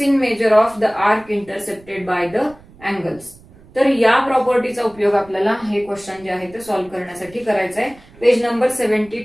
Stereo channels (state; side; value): noise; right; rumble, 24 dB below the sound